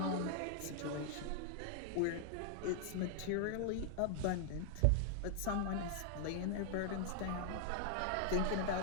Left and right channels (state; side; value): different; both; correlation -0.01